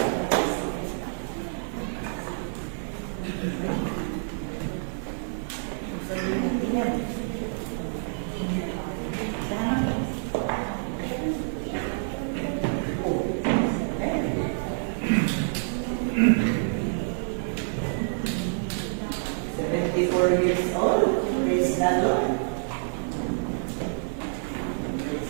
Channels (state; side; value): silent; left; digital silence